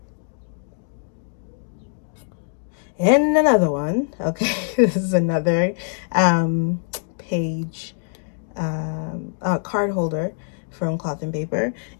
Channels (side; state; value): right; silent; digital silence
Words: And another one. Okay, this is another page card holder from Cloth and Paper.